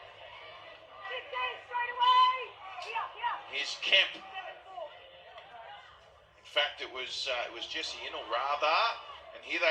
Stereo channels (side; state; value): both; identical; correlation 1.00